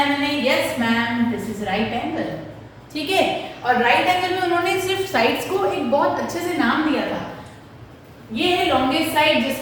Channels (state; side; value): identical; both; correlation 1.00